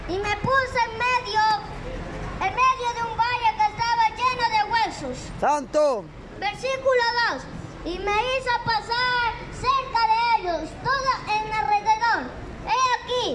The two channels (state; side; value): identical; both; correlation 1.00